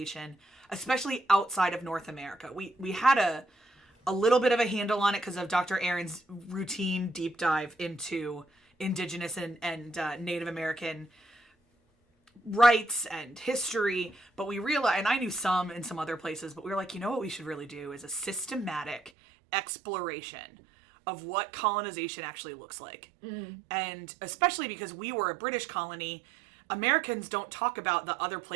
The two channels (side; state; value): left; drops out; at 19.1 s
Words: especially outside of North America. We had a little bit of a handle on it because of Dr. Erin's routine deep dive into Indigenous and Native American rights and history. But we realized, and I knew some in some other places, but we were like, you know what we should really do is a systematic exploration of what colonization actually looks like. And especially because we were a British colony, Americans don't talk about the other